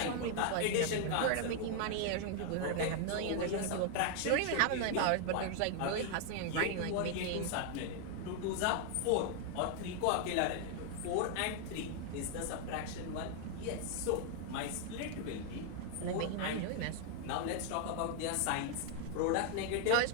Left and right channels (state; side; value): different; both; correlation 0.00